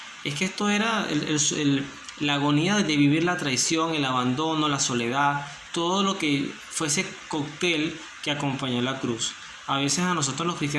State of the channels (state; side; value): identical; both; correlation 1.00